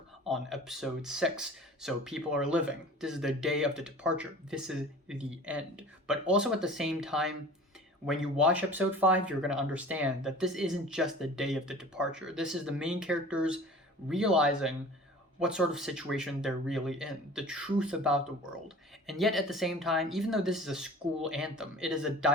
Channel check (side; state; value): both; normal; correlation 0.42